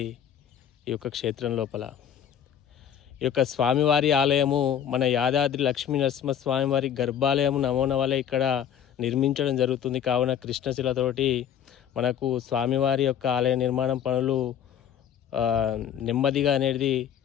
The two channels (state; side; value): quieter; right; 9.3 dB